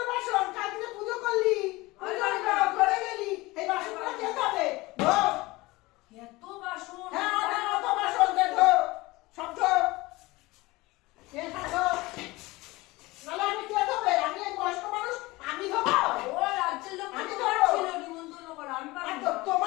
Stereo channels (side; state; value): right; quieter; 21.2 dB